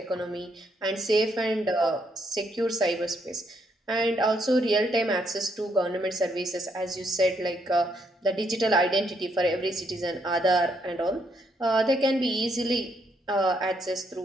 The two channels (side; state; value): both; normal; correlation 0.74